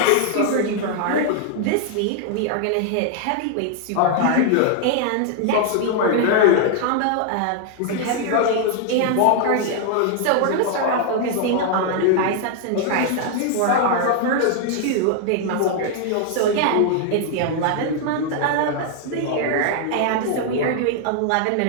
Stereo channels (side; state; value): both; different; correlation 0.00